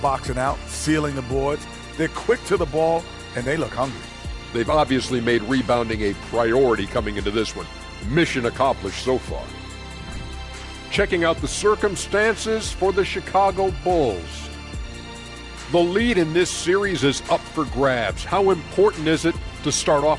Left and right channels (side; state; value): both; identical; correlation 1.00